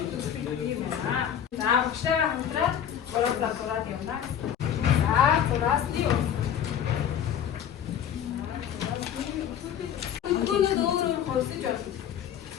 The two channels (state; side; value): quieter; right; 9.2 dB